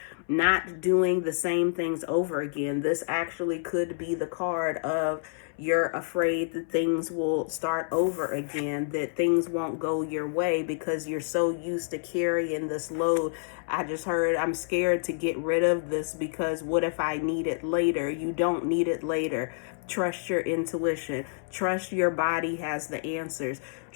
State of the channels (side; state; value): right; silent; 59 dB below the other